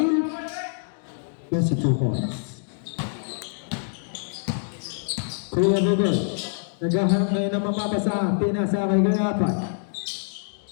yes, 2 points. Kuya Bogoy, naghahanap ngayon ng mapapasahan. Pinasa kay Kuya Apay.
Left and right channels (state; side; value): silent; right; digital silence